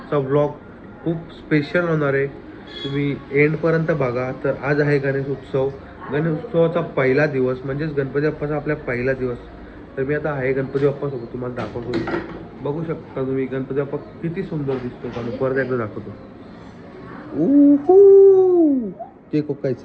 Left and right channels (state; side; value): identical; both; correlation 1.00